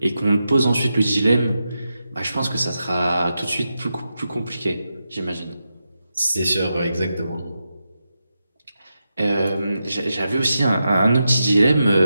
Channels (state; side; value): inverted; both; correlation -0.88